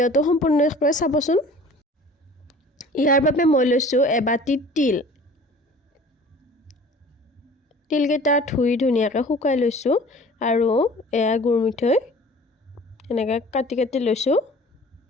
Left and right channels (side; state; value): both; normal; correlation 0.46